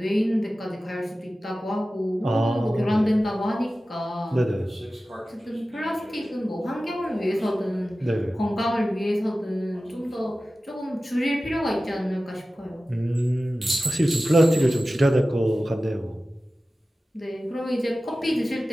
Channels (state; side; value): normal; both; correlation 0.95